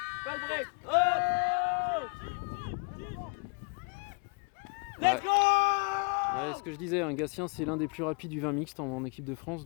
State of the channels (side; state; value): right; quieter; 32.8 dB